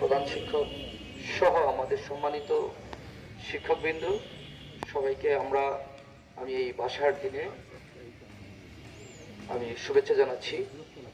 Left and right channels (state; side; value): identical; both; correlation 1.00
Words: প্রধান শিক্ষক সহ আমাদের সম্মানিত শিক্ষকবৃন্দ, সবাইকে আমি এই ভাষার দিনে আমি শুভেচ্ছা জানাচ্ছি।